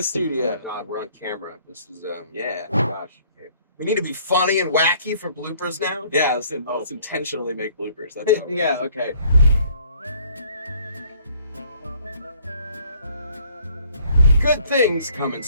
studio. Oh my God, we're on camera. This is, Yeah. oh my gosh. Okay. We need to be funny and wacky for bloopers now? Yeah, let's intentionally make bloopers. That's how Yeah, okay. Good things come in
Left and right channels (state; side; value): inverted; both; correlation -0.59